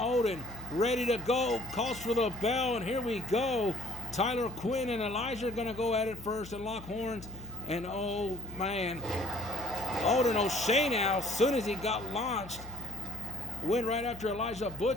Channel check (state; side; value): noise; left; hum, 15 dB below the sound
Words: ready to go. Calls for the bell, and here we go. Tyler Quinn and Elijah are going to go at it first and lock horns. And oh, man. Odin O'Shea now, as soon as he got launched, went right after Elijah